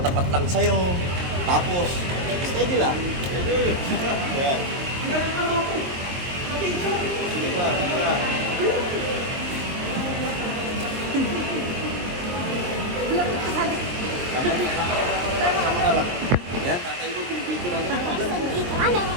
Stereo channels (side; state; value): left; late; 22 ms